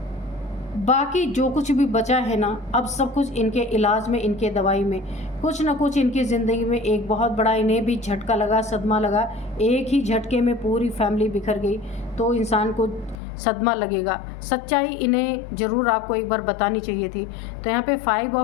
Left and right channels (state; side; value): drops out; right; at 13.2 s